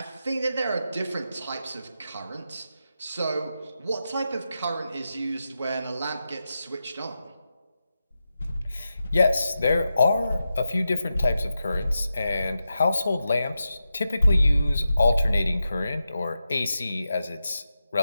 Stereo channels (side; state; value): both; inverted; correlation -0.90